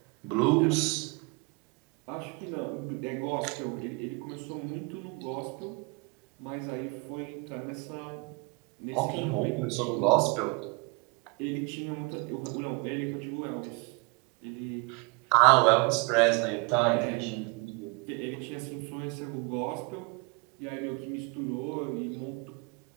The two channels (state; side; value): quieter; left; 30.0 dB